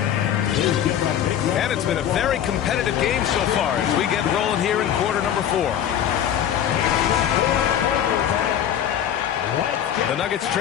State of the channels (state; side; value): quieter; right; 10.0 dB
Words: And it's been a very competitive game so far as we get rolling here in quarter number 4. The Nuggets